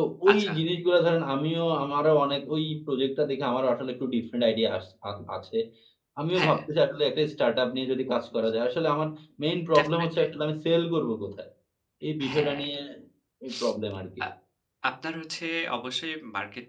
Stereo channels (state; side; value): identical; both; correlation 1.00